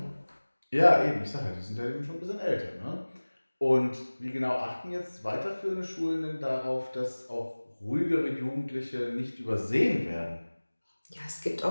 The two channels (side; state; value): both; inverted; correlation -1.00